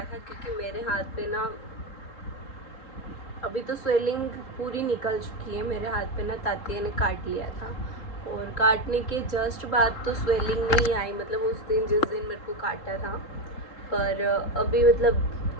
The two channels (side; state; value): right; late; 3.8 ms